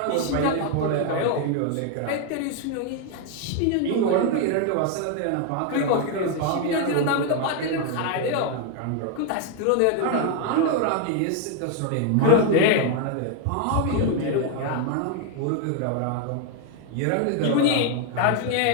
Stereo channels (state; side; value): different; both; correlation 0.01